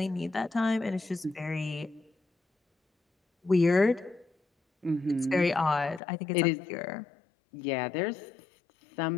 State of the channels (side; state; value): right; drops out; at 6.0 s